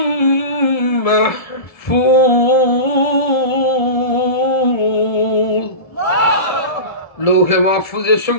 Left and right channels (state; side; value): late; right; 1.7 ms